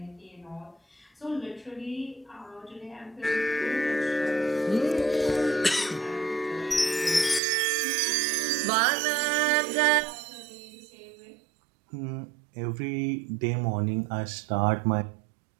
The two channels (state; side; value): drops out; left; at 7.4 s